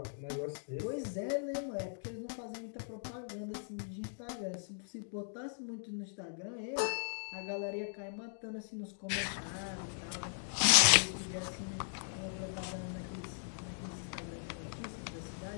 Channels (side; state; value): right; silent; digital silence